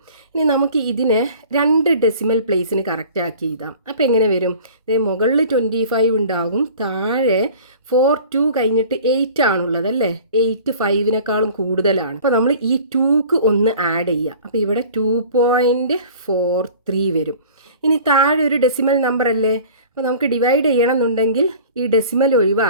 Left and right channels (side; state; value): both; inverted; correlation -0.45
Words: ഇനി നമുക്ക് ഇതിനെ രണ്ട് ഡെസിമൽ പ്ലേസിന് കറക്റ്റാക്കി എഴുതാം. അപ്പോൾ എങ്ങനെ വരും? മുകളിൽ 25 ഉണ്ടാകും, താഴെ 42 കഴിഞ്ഞിട്ട് 8 ആണുള്ളത് അല്ലേ? 8 5നേക്കാളും കൂടുതലാണ്. അപ്പോൾ നമ്മൾ ഈ 2ക്ക് ഒന്ന് ആഡ് ചെയ്യുക. അപ്പോൾ ഇവിടെ 2.43 വരും. ഇനി താഴെ ഒരു ഡെസിമൽ നമ്പർ അല്ലേ? അപ്പോൾ നമുക്ക് ഡിവൈഡ് ചെയ്യണം എന്നുണ്ടെങ്കിൽ ഈ ഡെസിമൽ